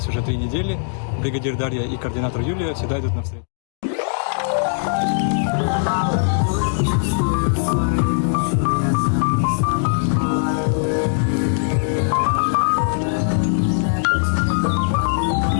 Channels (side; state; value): right; silent; digital silence